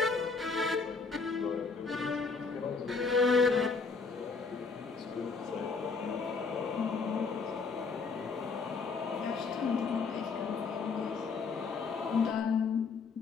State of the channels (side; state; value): right; quieter; 4.7 dB